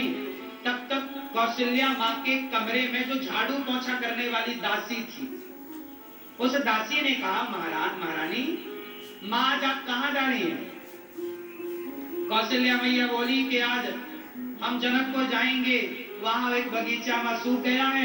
तब तक कौशल्या माँ के कमरे में जो झाड़ू पोंछा करने वाली दासी थी, उस दासी ने कहा महाराज महारानी माँ आज आप कहाँ जा रही हैं? कौशल्या मैया बोली कि आज हम जनकपुर जाएंगे, वहां एक बगीचा में सूख गया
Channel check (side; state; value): both; identical; correlation 1.00